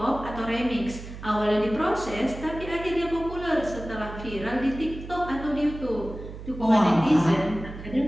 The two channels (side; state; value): right; noise; hum, 12 dB below the sound